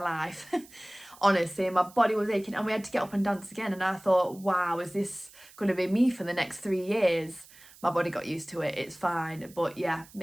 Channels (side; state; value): right; noise; hiss, 23 dB below the sound